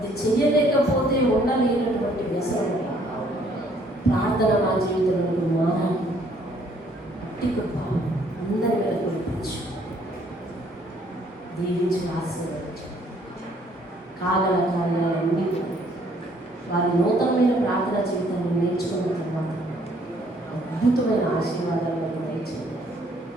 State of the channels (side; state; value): both; normal; correlation 0.64